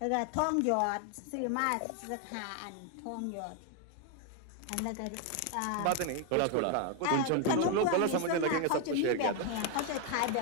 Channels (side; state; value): both; different; correlation 0.01